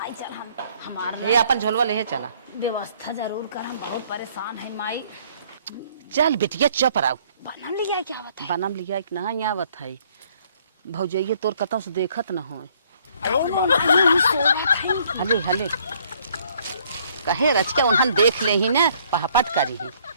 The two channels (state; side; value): inverted; both; correlation -0.62